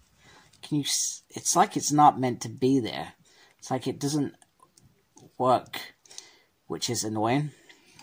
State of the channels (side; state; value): both; identical; correlation 1.00